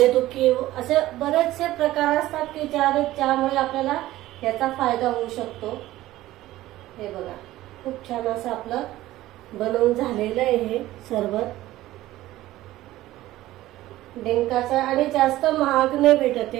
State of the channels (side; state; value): left; quieter; 15.9 dB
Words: दुखी, असे बरेचसे प्रकार असतात की ज्यामुळे आपल्याला याचा फायदा होऊ शकतो। हे बघा, खूप छान असं आपलं बनवून झालेलं आहे हे सरबत डिंकाचा। आणि जास्त महाग नाही भेटत,